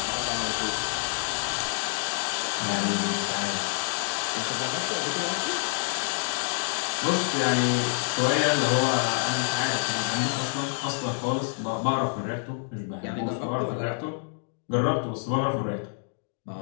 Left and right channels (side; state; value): right; silent; digital silence